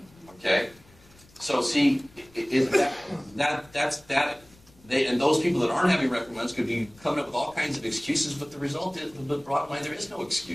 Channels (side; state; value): left; noise; rumble, 27 dB below the sound